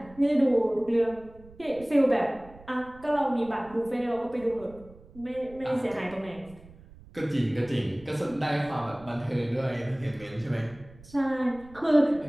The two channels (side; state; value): right; noise; rumble, 22 dB below the sound